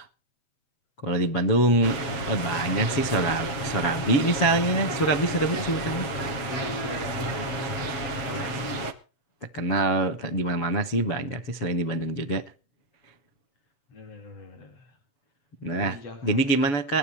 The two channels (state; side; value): late; right; 7.4 ms